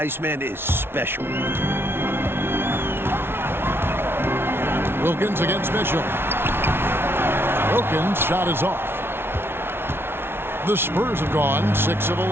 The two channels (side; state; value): left; late; 0.11 ms